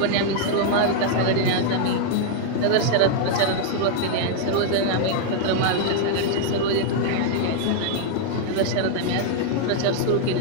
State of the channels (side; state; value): both; different; correlation 0.00